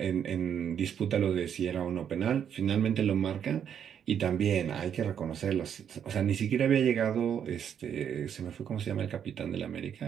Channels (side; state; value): left; quieter; 8.6 dB